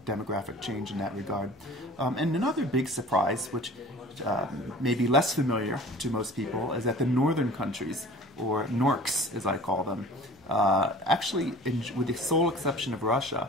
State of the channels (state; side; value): normal; both; correlation 0.43